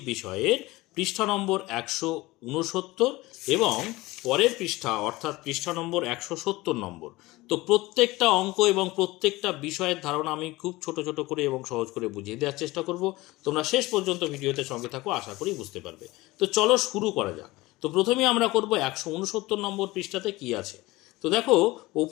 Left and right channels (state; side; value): quieter; right; 20.2 dB